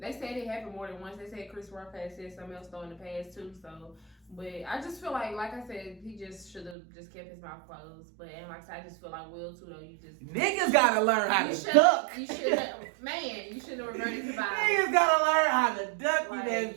said it happened more than once. They said Chris Rock had said something else though in the past too. So. But I just feel like I said, he just should have just kept his mouth closed. But and like I said, I just feel like Will too though. You just niggas gotta learn how to duck. You should have, man. You should have reverted to violence. Niggas gotta learn how to duck. Like, that bitch.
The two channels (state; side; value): drops out; left; at 6.8 s